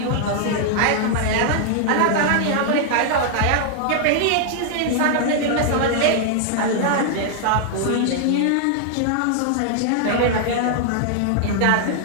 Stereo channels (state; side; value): different; both; correlation 0.00